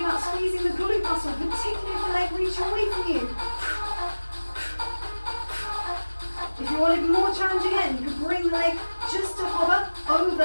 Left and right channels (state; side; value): inverted; both; correlation -1.00